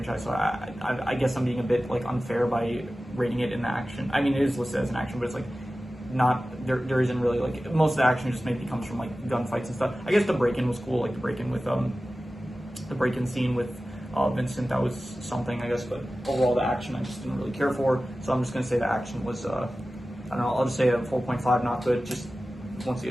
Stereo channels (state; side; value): normal; both; correlation 0.95